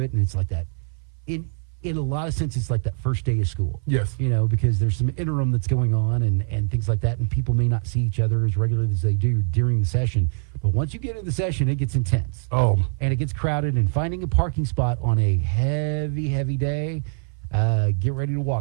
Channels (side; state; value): left; silent; 59 dB below the other